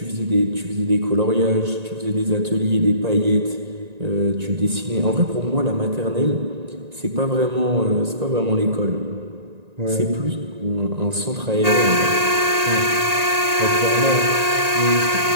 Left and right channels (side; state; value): left; late; 1.9 ms